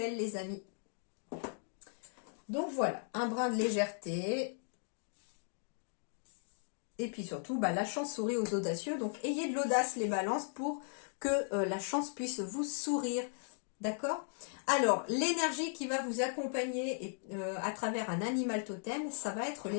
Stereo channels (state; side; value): silent; right; digital silence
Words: les amis. Donc voilà, un brin de légèreté. Et puis surtout, la chance sourit aux audacieux. Donc ayez de l'audace les balances pour que la chance puisse vous sourire. D'accord? Alors, l'énergie qui va vous accompagner à travers un animal totem, ça va être